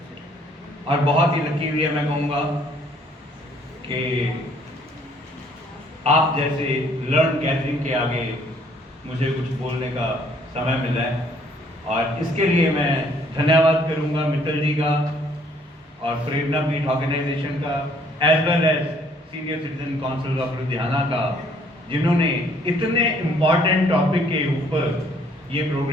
और बहुत ही लकी हुई है, मैं कहूँगा कि आप जैसे लर्न गैदरिंग के आगे मुझे कुछ बोलने का समय मिला है और इसके लिए मैं धन्यवाद करूंगा मित्तल जी का और प्रेरणा पीठ ऑर्गेनाइजेशन का as well as senior citizen council of Ludhiana का, जिन्होंने इतने इम्पॉर्टेंट टॉपिक के ऊपर ये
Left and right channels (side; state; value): both; normal; correlation 0.62